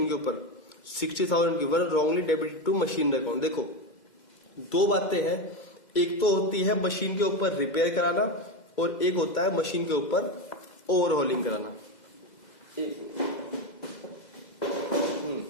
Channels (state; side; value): late; right; 2.0 ms